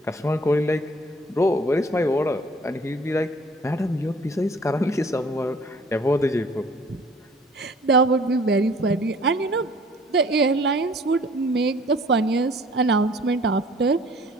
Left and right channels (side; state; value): both; normal; correlation 0.53